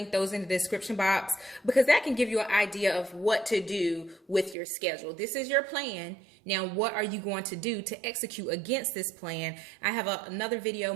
those in the description box, because that can give you an idea of what to do with your schedule. This is your plan. Now, what are you going to do to execute against this plan? I have another video,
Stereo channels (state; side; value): drops out; left; at 4.5 s